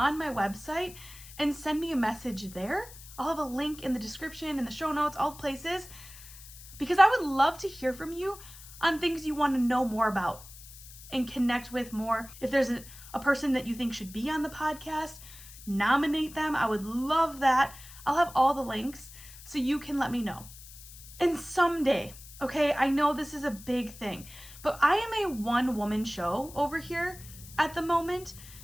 my website and send me a message there. I'll have a link in the description, in the show notes, all places, because I would love to hear from you on things you want to know more about and connect with more. If there's a person that you think should be on the podcast, nominate them. I would love that. I'll have all the links so you can let me know. And someday, okay, I know this is a big thing, but I am a one-woman show over here at the moment.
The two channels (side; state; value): left; noise; hiss, 17 dB below the sound